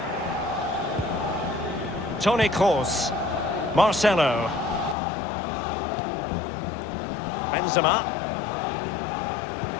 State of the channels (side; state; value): right; drops out; at 5.0 s